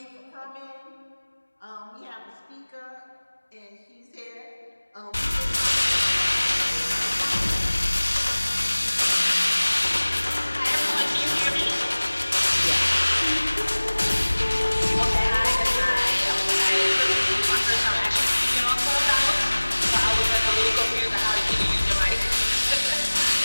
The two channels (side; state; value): both; inverted; correlation -1.00